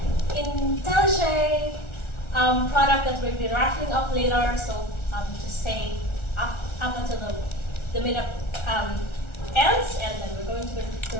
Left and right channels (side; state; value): right; late; 1.4 ms